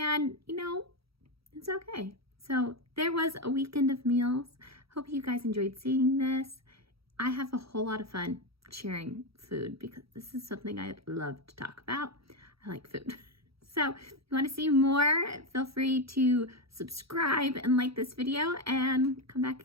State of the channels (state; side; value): late; left; 0.76 ms